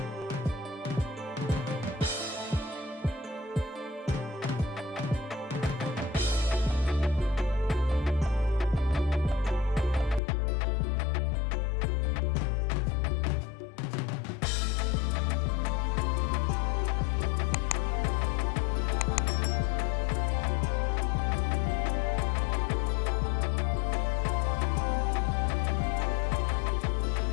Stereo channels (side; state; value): right; drops out; at 10.2 s